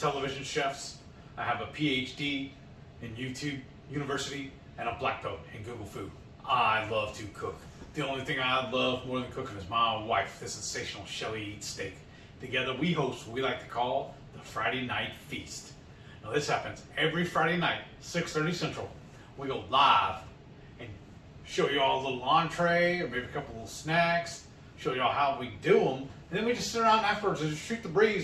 chefs. I have a PhD in YouTube University and a black belt in Google Food. I love to cook. The only thing I love more than cooking is my wife, the sensational Shelly Eats Steak. Together we host what we like to call the Friday Night Feast. Now this happens every Friday night, 6:30 Central. We go live and show you all a little entree or maybe a couple little snacks, show you all how we do them, and then we just sit around afterwards and just shoot the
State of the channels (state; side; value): identical; both; correlation 1.00